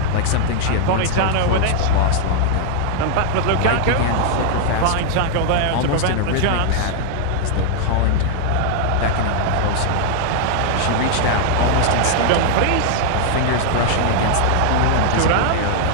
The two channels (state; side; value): different; both; correlation -0.01